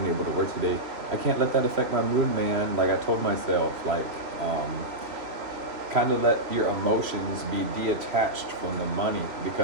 able to work today. I can't let that affect my mood, man. Like I told myself, like, kind of let your emotions be detached from the money,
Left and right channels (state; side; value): late; left; 3.0 ms